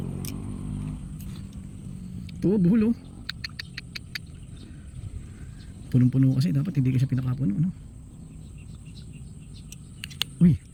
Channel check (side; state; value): both; identical; correlation 1.00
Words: Ito, buhol oh. Punong-puno kasi. Dapat hindi kasi pinakapuno, no? Uy.